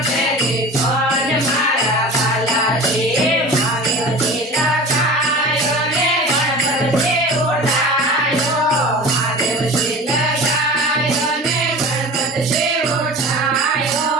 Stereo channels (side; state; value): both; normal; correlation 0.36